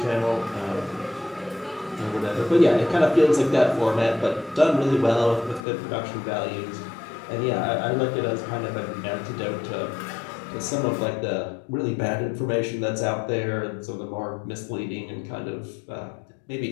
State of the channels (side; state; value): right; drops out; at 5.6 s